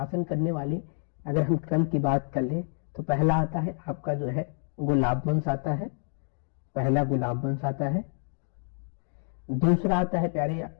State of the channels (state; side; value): silent; right; 59 dB below the other